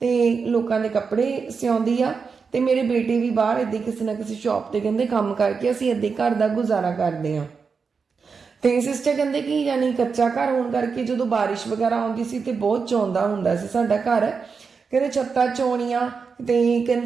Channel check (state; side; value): quieter; left; 5.3 dB